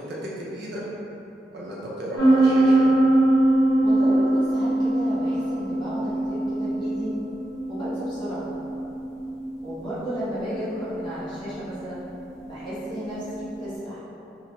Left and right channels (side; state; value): both; normal; correlation 0.89